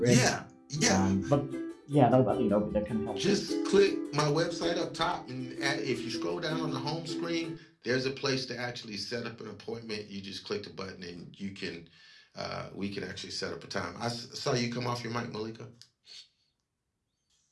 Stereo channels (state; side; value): identical; both; correlation 1.00